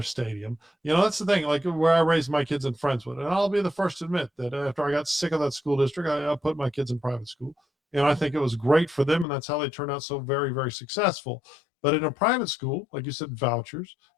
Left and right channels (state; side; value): drops out; right; at 9.2 s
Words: stadium. You know, that's the thing, like where I raised my kids in Friendswood. And I'll be the first to admit that after I got sick of that school district, I put my kids in private school. And I think it was great for them. And that's how they turned out so very, very successful. But in a private school, like you said, vouchers,